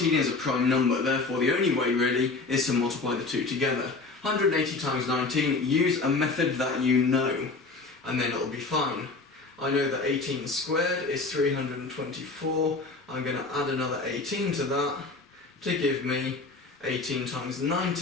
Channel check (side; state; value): right; quieter; 3.8 dB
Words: is a prime number, therefore the only way really is to multiply the two together. 180 times 19, use a method that you know, and then it'll be fine. I know that 18 squared is 324, I'm going to add another 18 to that to give me 18 times